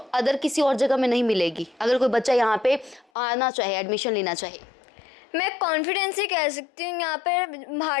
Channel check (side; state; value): right; drops out; at 3.1 s